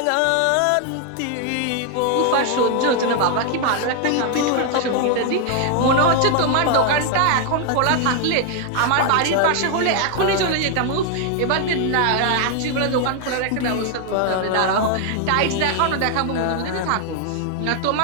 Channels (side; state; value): both; different; correlation 0.00